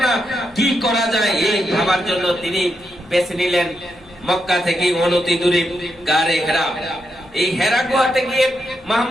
না, কি করা যায়? এই ভাবার জন্য তিনি বেছে নিলেন মক্কা থেকে অনতি দূরে গারে হেরা। এই হেরা গুহাতে গিয়ে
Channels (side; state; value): both; normal; correlation 0.83